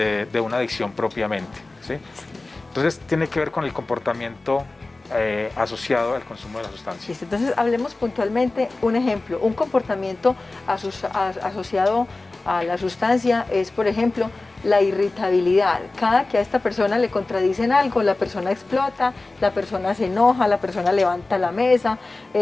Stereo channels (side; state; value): right; quieter; 3.2 dB